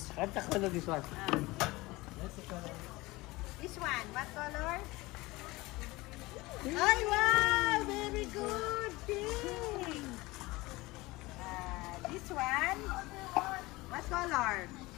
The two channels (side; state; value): right; quieter; 21.2 dB